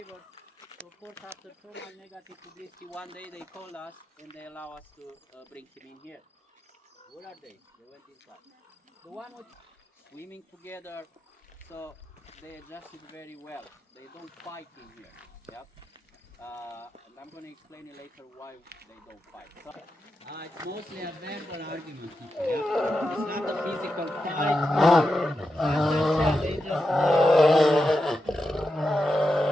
So of course after so much negative publicity, one day they called us and they allow us to bring him in here. Where are they? They went inside. The one with swimming together, so they adjusted very well. They don't fight in here. Yep. And I'm going to explain it later why they don't fight. So, it's mostly a verbal argument. Yeah? It's not a physical fight. They just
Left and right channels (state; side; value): normal; both; correlation 0.88